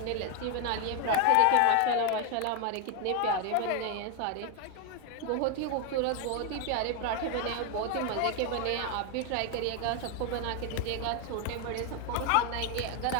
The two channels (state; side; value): different; both; correlation 0.01